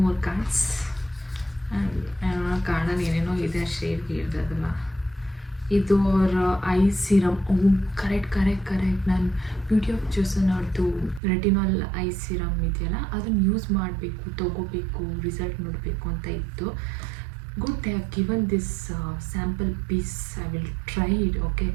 cards. ಆ್ಯಂಡ್ ಕಾರ್ಡಲ್ಲಿ ಏನೇನೋ ಇದೆ, ಶೇಡ್ ಇರ್ದದಲ್ಲ. ಇದು ಅವರ ಐ ಸಿರಮ್. ಕರೆಕ್ಟ್. ನಾನು ಬ್ಯೂಟಿ ಆಫ್ ಜೋಸನ್ ಅವ್ರದ್ದು ರೆಟಿನಾಲ್ ಐ ಸಿರಮ್ ಇದೆಯಲ್ಲ, ಅದನ್ನು ಯೂಸ್ ಮಾಡಬೇಕು, ತೊಗೋಬೇಕು, ರಿಸಲ್ಟ್ ನೋಡಬೇಕು ಅಂತ ಇತ್ತು. Good, they have given this sample piece. I will try it. Okay,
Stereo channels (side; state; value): left; drops out; at 11.2 s